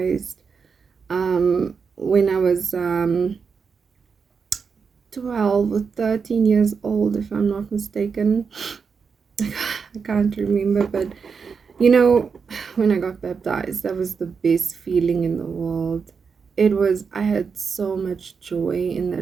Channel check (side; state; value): left; quieter; 5.7 dB